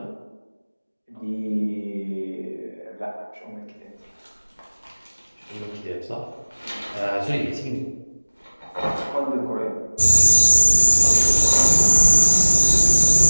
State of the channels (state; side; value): inverted; both; correlation -1.00